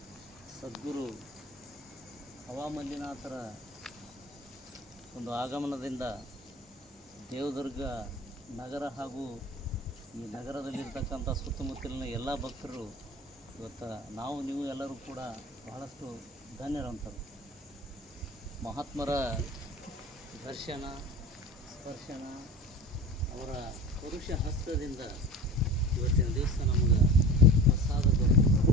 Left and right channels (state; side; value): normal; both; correlation 0.36